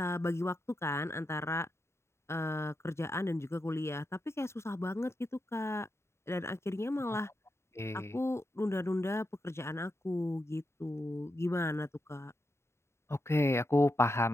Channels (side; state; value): right; late; 0.13 ms